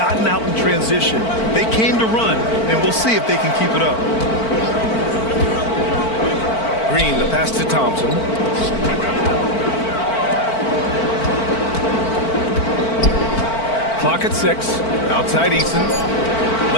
out in transition. They came to run, and we'll see if they can keep it up. Green, the pass to Thompson. Clock at 6. Outside Eason.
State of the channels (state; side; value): late; right; 4.5 ms